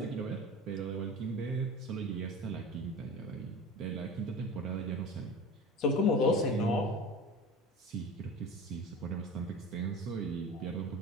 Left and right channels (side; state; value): both; normal; correlation 0.34